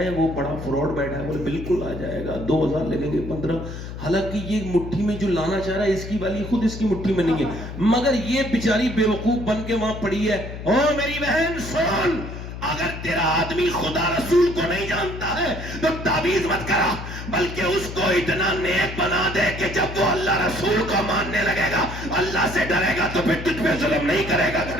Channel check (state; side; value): noise; left; hum, 9 dB below the sound